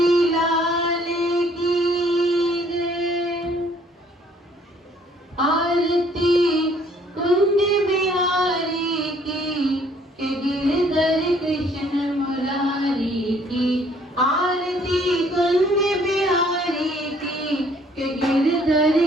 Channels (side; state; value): both; normal; correlation 0.61